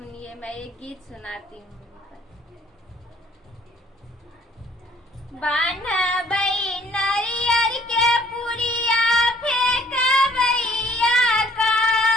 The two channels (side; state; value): both; normal; correlation 0.60